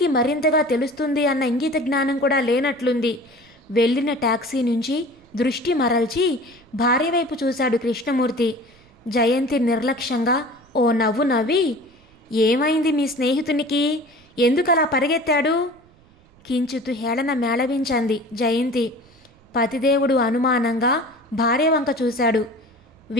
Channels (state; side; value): noise; right; rumble, 29 dB below the sound